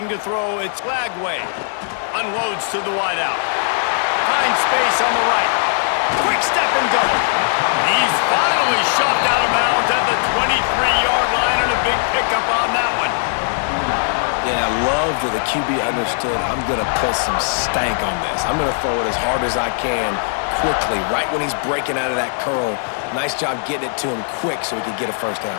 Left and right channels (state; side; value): silent; right; digital silence